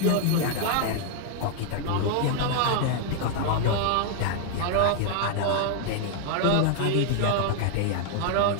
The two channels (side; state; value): both; different; correlation 0.00